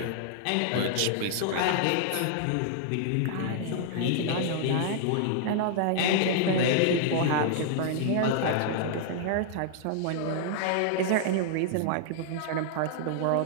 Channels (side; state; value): both; different; correlation -0.01